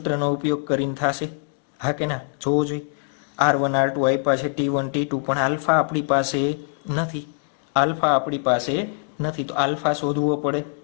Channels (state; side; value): silent; right; digital silence